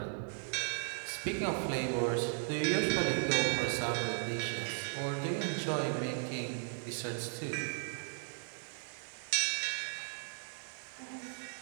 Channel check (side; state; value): left; silent; digital silence